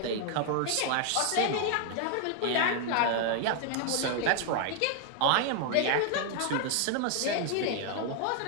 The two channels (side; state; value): both; different; correlation 0.00